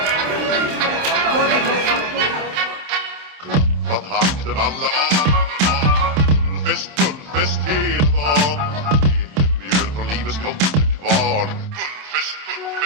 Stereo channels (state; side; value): late; left; 27 ms